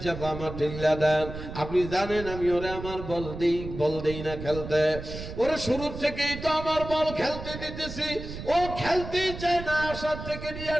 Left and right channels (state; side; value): noise; right; rumble, 10 dB below the sound